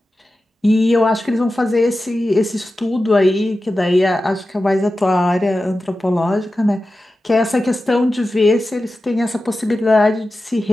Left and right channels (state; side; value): normal; both; correlation 0.93